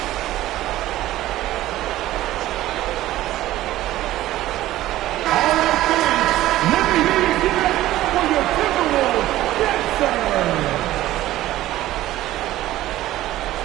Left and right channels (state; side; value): quieter; left; 15.0 dB